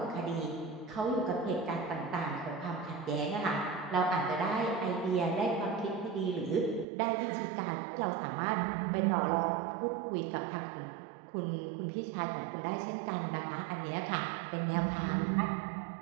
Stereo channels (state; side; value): drops out; left; at 6.9 s